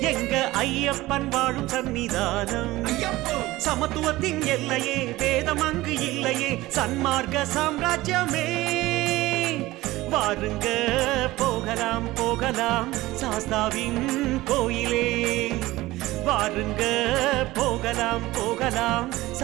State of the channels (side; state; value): left; quieter; 18.2 dB